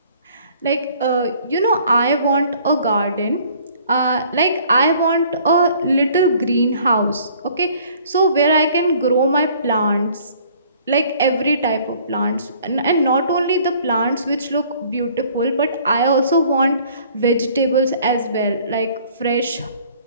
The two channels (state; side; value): inverted; both; correlation -0.56